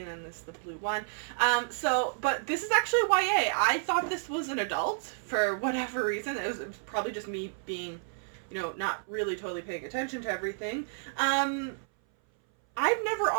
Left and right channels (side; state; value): left; silent; 57 dB below the other